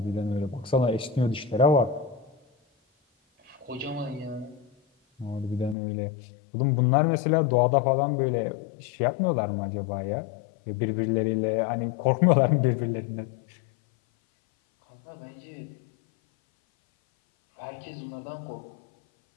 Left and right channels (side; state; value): right; drops out; at 5.8 s